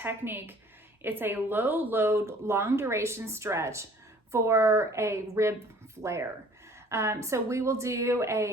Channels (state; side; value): normal; both; correlation 0.53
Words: It's a low load, long duration stretch for a rib flare. So we will do